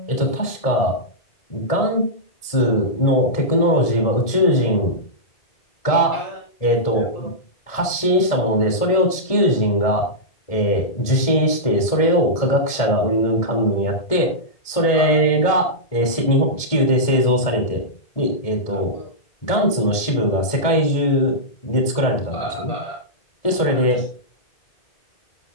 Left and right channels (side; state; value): right; late; 1.7 ms